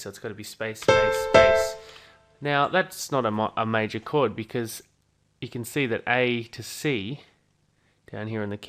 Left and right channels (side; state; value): both; identical; correlation 1.00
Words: so it's got to be space, space, space. Now that's not a major chord because you can see that A to C down here on the